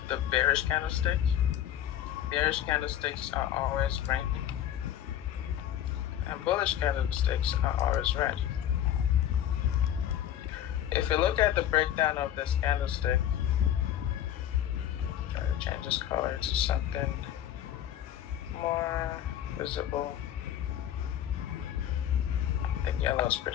the bearish candlestick. Bearish candlesticks are always green, and bullish candlesticks are always red. If you look at the breakdown of this candlestick, try to change this color to something more visible. I think yellow is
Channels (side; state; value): right; quieter; 11.0 dB